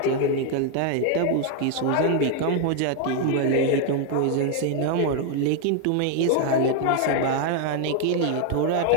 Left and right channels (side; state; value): both; different; correlation 0.01